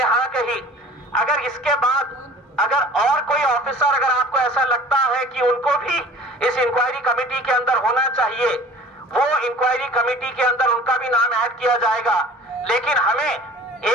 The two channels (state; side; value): normal; both; correlation 0.45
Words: हाँ कही। अगर इसके बाद अगर और कोई ऑफिसर अगर आपको ऐसा लगता है कि उनको भी इस इंक्वायरी कमेटी के अंदर होना चाहिए, वो इंक्वायरी कमेटी के अंदर उनका भी नाम ऐड किया जाएगा। लेकिन हमें